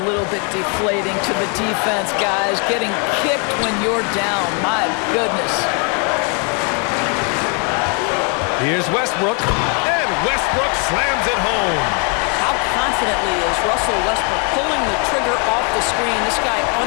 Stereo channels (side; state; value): right; quieter; 36.7 dB